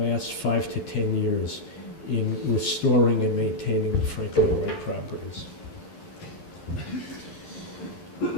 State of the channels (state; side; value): late; right; 11 ms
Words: last 5 to 10 years in restoring and maintaining the Frank Lloyd Wright properties.